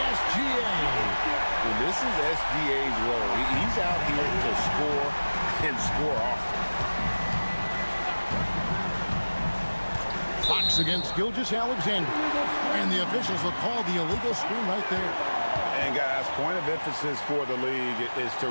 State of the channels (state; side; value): inverted; both; correlation -1.00